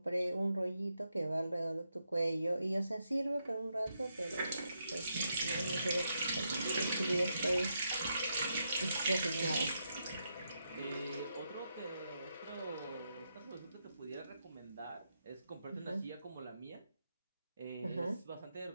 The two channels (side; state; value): both; inverted; correlation -0.82